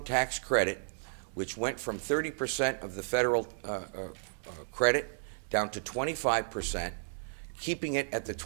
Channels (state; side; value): silent; left; digital silence